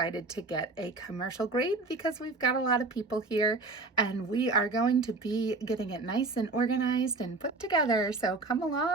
to get a commercial grade because we've got a lot of people here, and we are going to be getting it nice and organized and put together. So come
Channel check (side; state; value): left; quieter; 3.4 dB